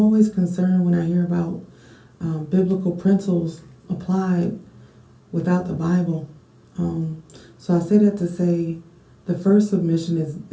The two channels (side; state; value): both; identical; correlation 1.00